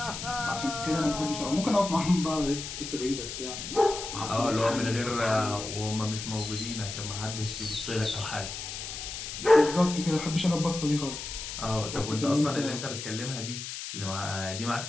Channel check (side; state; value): left; noise; hiss, 7 dB below the sound